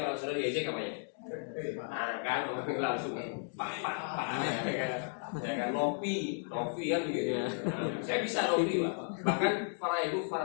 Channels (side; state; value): right; silent; 55 dB below the other